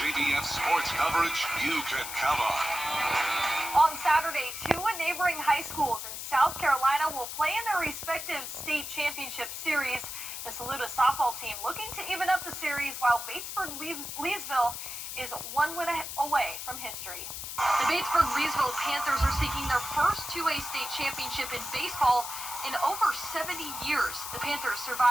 sports coverage you can count on. On Saturday, two neighboring high schools in South Carolina will play in their respective state championship series. The Saluda softball team looking to even up the series, while Batesburg-Leesville is one win away from history. The Batesburg-Leesville Panthers are seeking their first 2A state championship in baseball in over 70 years. The Panthers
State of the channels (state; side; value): noise; left; hiss, 7 dB below the sound